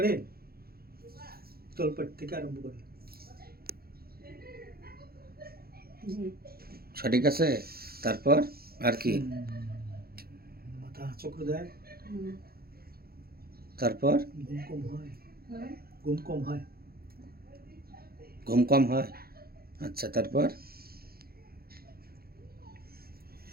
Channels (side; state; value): left; late; 0.44 ms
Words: তলপেট থেকে আরম্ভ করে। সঠিক আছে। তারপর আর কি? মাথা চক্র দেয়। তারপর ঘুম কম হয়। ঘুম কম হয়। ঘুম কম হয়। আচ্ছা, তারপর?